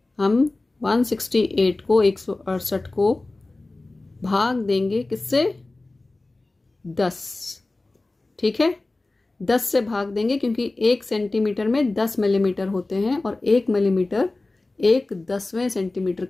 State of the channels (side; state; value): right; quieter; 3.1 dB